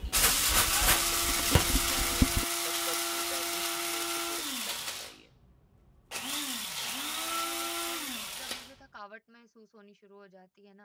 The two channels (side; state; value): both; identical; correlation 1.00